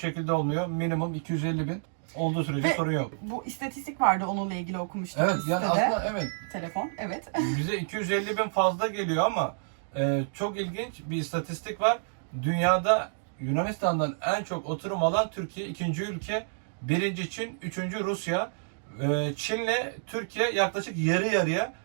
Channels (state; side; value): silent; left; digital silence